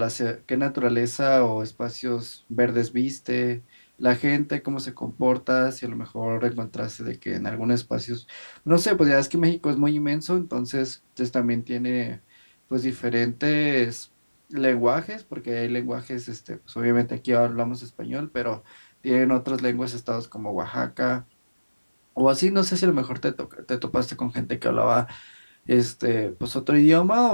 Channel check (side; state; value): both; inverted; correlation -1.00